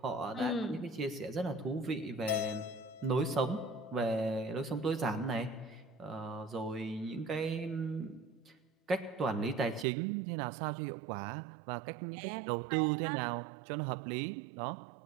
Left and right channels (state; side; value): drops out; left; at 9.9 s